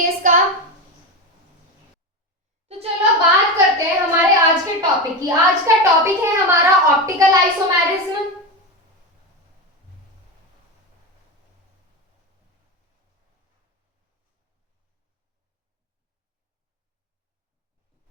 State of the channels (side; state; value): both; normal; correlation 0.18